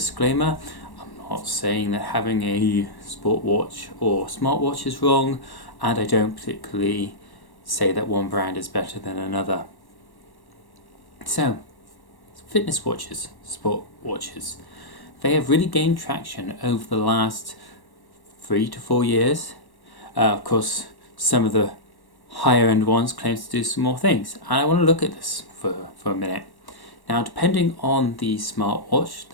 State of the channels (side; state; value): right; late; 1.1 ms